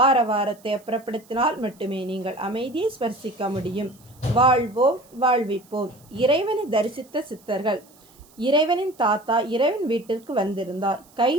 அப்புறப்படுத்தினால் மட்டுமே நீங்கள் அமைதியை ஸ்பர்சிக்க முடியும். வாழ்வோம் வாழ்விப்போம். இறைவனை தரிசித்த சித்தர்கள். இறைவனின் தாத்தா இறைவன் வீட்டிற்கு வந்திருந்தார்.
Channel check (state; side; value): noise; right; hiss, 28 dB below the sound